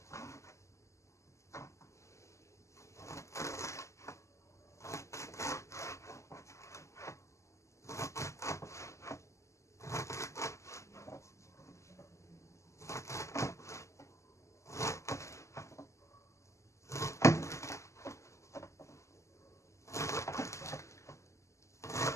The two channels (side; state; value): right; late; 0.14 ms